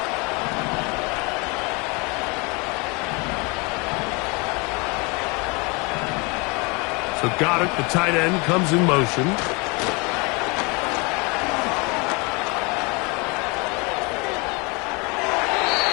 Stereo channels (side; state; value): right; quieter; 29.0 dB